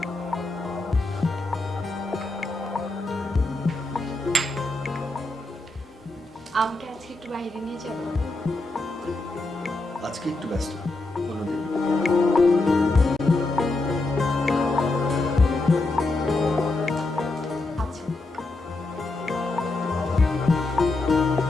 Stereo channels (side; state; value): right; quieter; 3.1 dB